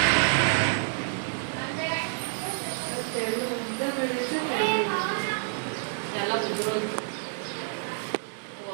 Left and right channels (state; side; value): silent; left; digital silence